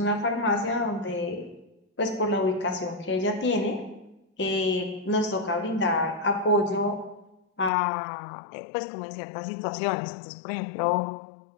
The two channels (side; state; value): right; drops out; at 7.7 s